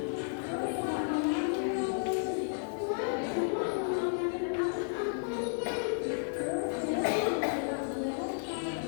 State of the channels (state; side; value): silent; right; digital silence